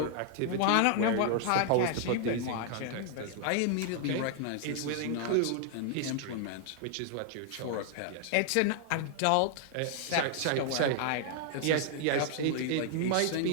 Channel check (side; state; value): both; different; correlation 0.00